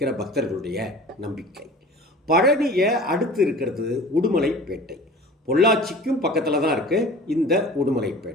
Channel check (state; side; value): normal; both; correlation 0.42